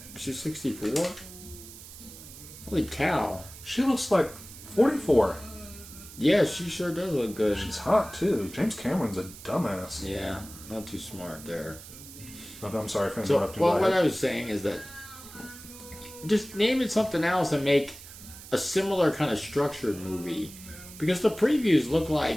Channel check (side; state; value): right; noise; hiss, 16 dB below the sound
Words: she's 64. Holy cow! She looks like 44. Yeah, she sure does look good. She's hot too. James Cameron's a dumbass. Yeah, not too smart there. Okay, I'm sorry for So, interrupting. well, Go what ahead. I was saying is that just name it something else and make a similar kind of structured movie, because the previews look